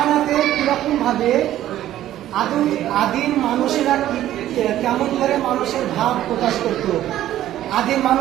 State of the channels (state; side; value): quieter; left; 13.0 dB